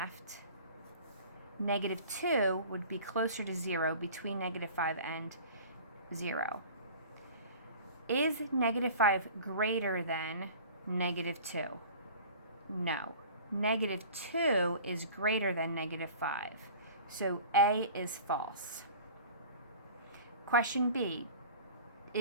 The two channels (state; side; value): inverted; both; correlation -0.43